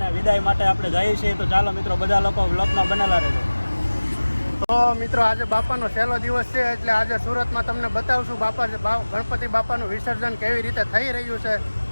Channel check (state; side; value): inverted; both; correlation -1.00